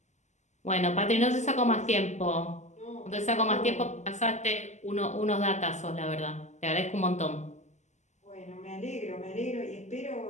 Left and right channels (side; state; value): right; late; 0.34 ms